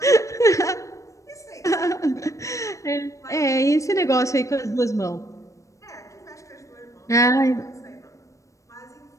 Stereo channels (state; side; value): late; right; 0.15 ms